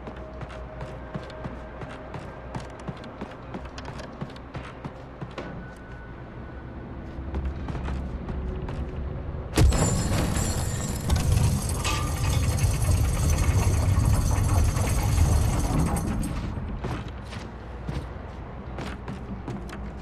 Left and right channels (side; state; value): both; identical; correlation 1.00